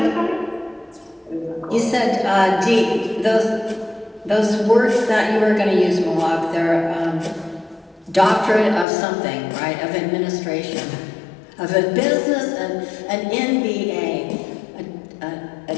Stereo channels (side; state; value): right; drops out; at 8.8 s